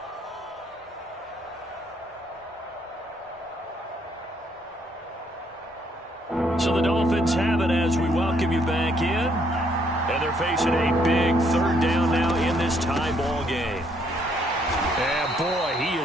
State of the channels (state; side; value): normal; both; correlation 0.69